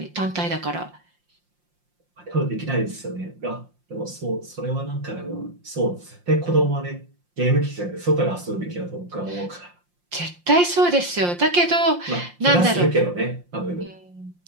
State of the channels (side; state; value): left; late; 5.7 ms